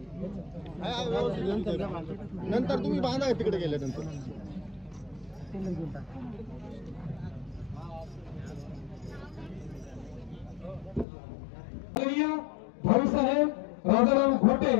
नंतर तुम्ही बांधा तिकडे गेल्यानंतर. भाऊसाहेब राजाराम घोटे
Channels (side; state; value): right; drops out; at 11.1 s